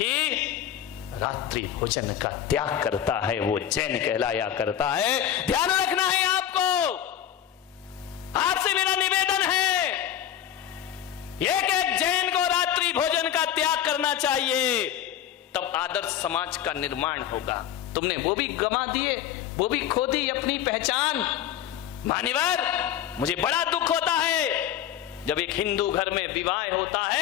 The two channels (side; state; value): right; quieter; 10.4 dB